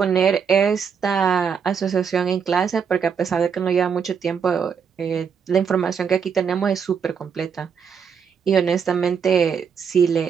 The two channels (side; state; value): left; quieter; 6.7 dB